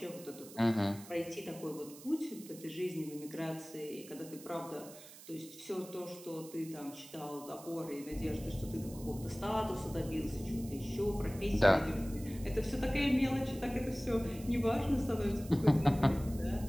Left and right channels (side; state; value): right; noise; hiss, 17 dB below the sound